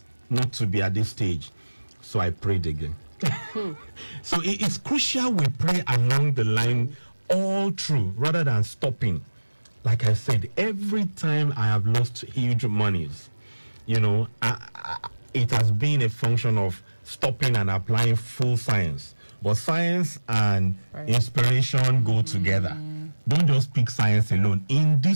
not to be at this stage. So I prayed again. So it's crucial we pray along the line all through rather than stopping. Like I said, every time I have lost huge monies, you know, it has been a function of stopping and applying full science. But science and inspiration go together. Don't just pick science alone in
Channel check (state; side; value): inverted; both; correlation -1.00